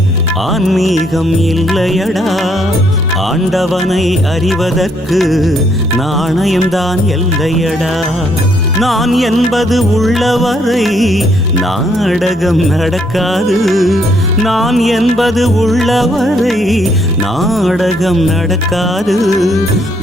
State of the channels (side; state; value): both; normal; correlation 0.71